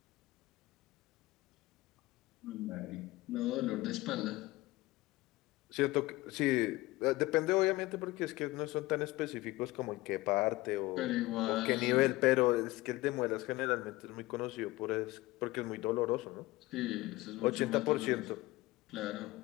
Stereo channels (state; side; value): quieter; right; 19.5 dB